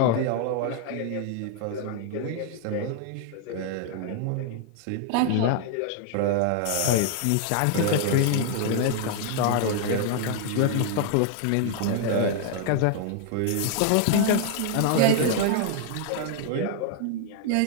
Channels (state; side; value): different; both; correlation 0.00